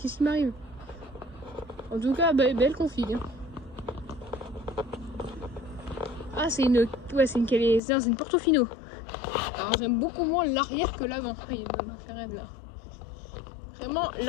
qui m'arrive? En tout cas, belle config. Hein. Ah, c'est une. Ouais, c'est une Portofino. Alors, j'aime beaucoup moins l'arrière que l'avant. Ah, il y a une McLaren là. Vraiment,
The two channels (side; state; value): right; drops out; at 7.8 s